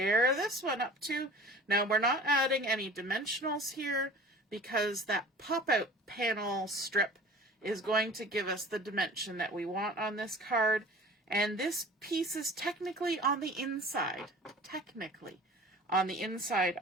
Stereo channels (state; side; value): normal; both; correlation 0.43